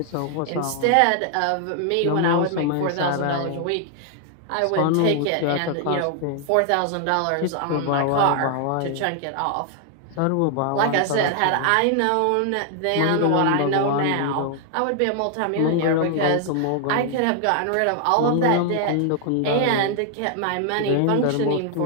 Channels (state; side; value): different; both; correlation 0.00